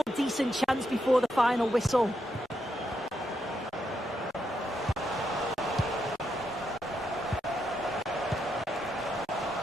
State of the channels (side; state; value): both; normal; correlation 0.81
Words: decent chance before the final whistle.